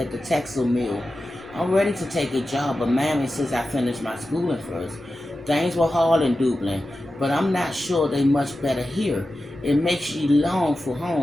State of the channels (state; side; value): noise; left; rumble, 25 dB below the sound